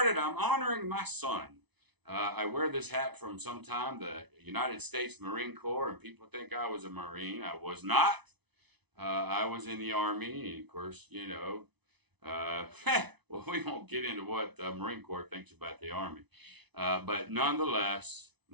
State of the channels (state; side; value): late; left; 0.99 ms